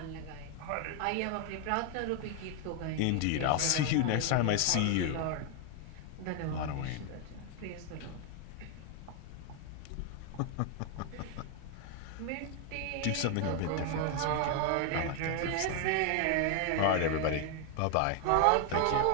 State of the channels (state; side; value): different; both; correlation 0.00